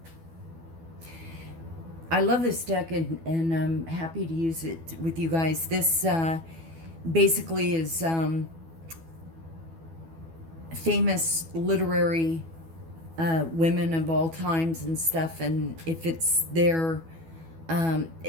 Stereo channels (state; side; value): late; left; 12 ms